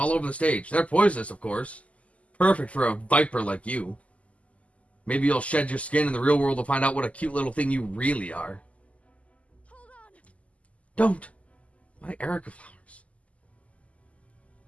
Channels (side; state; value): right; late; 0.066 ms